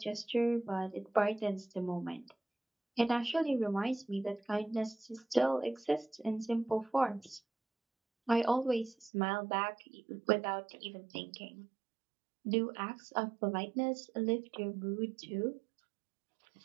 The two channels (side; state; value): left; drops out; at 9.1 s